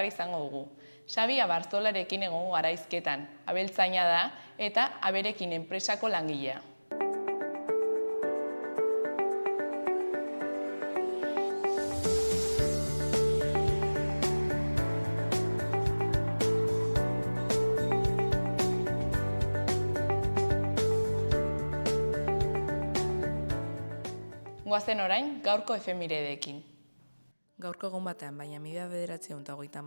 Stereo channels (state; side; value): inverted; both; correlation -1.00